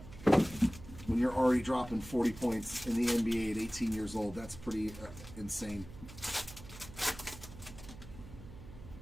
When you're already dropping 40 points in the NBA at 18 years old, that's pretty insane.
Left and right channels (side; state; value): right; noise; hum, 15 dB below the sound